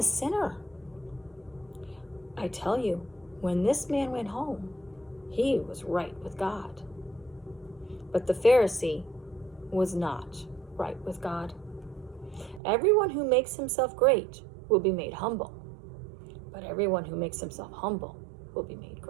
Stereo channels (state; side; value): drops out; left; at 12.6 s